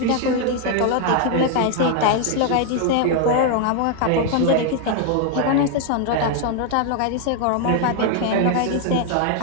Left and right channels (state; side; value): different; both; correlation 0.00